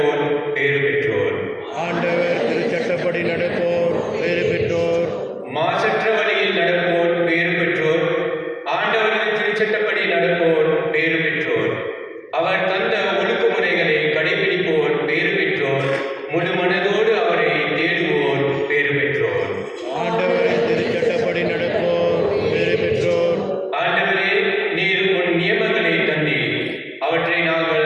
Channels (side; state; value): both; identical; correlation 1.00